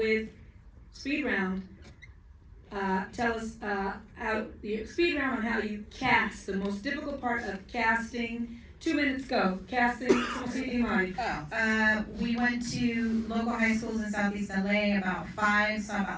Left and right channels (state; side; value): identical; both; correlation 1.00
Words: speed round. Tell us how the speed round on how you cast, the most difficult part of casting. 2 minutes go. Casting. We went to local high schools in Southeast LA, about 5, saw